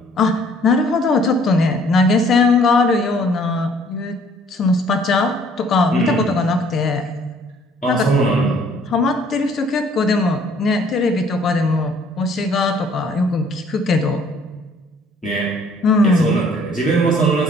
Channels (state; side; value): normal; both; correlation 0.59